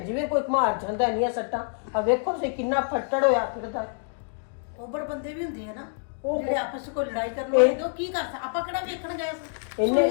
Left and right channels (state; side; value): silent; right; digital silence